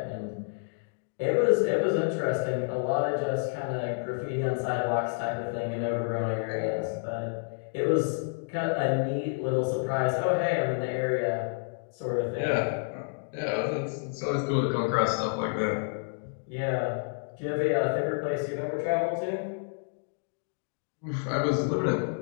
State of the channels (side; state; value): right; silent; digital silence